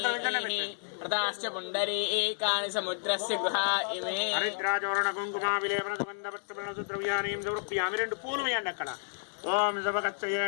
ప్రదాశ్చ పుండరీకాని సముద్రస్య గృహా ఇమే హరిద్రాచోరణ కుంకుమా విలేపన సుగంధ ద్రవ్యాన్ని సమర్పయామి. 2 పూలు వేయండి అక్కడ. ఓం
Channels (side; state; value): right; silent; digital silence